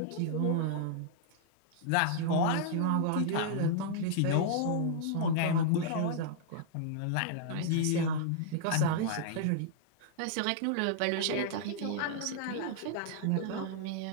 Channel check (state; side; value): different; both; correlation -0.01